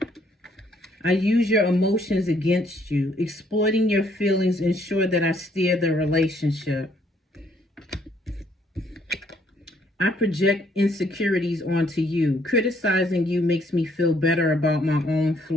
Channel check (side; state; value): both; normal; correlation 0.67